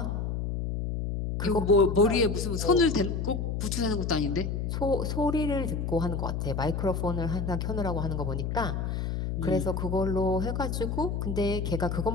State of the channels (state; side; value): noise; left; hum, 2 dB below the sound